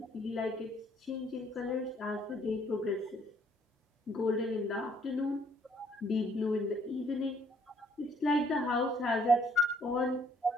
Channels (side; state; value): both; normal; correlation 0.65